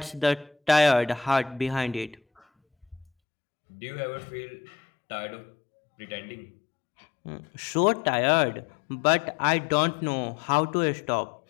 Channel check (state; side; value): drops out; right; at 3.1 s